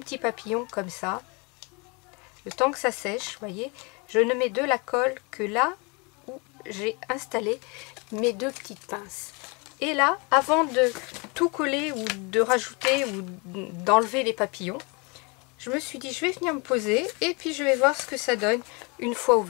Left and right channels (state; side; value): quieter; right; 30.3 dB